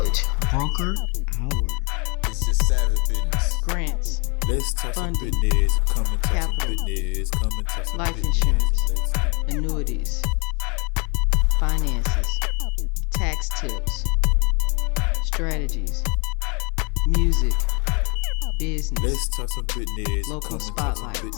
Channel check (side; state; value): right; quieter; 31.7 dB